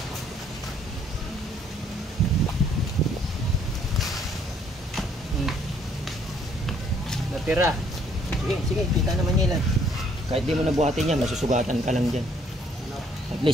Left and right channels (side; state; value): both; normal; correlation 0.64